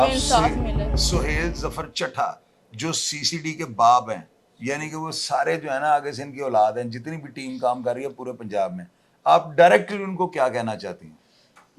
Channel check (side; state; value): both; identical; correlation 1.00